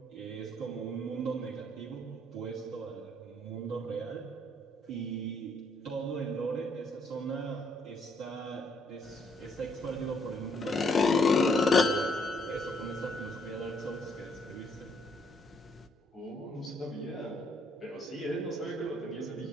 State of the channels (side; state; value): both; normal; correlation 0.69